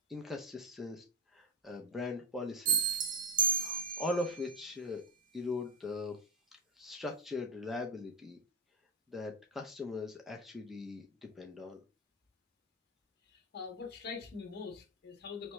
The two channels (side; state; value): both; normal; correlation 0.08